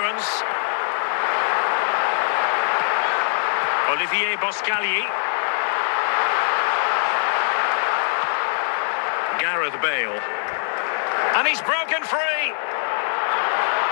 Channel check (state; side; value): silent; right; digital silence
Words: Olivier Boscagli. Gareth Bale. And he's broken free.